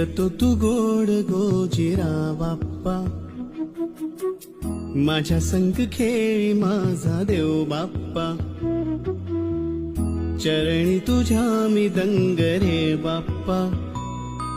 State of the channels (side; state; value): both; identical; correlation 1.00